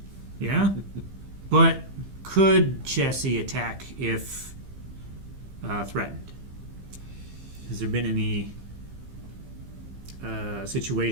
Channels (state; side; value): late; left; 15 ms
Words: Yeah? But could Chessie attack if threatened? Has there been any